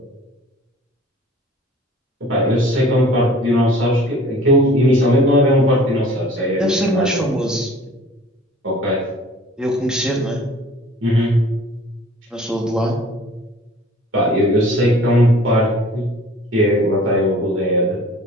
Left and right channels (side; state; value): both; normal; correlation 0.49